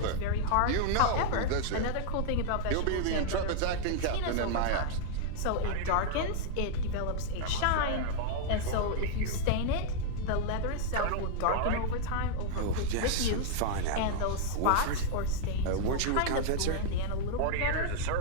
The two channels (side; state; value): both; different; correlation -0.01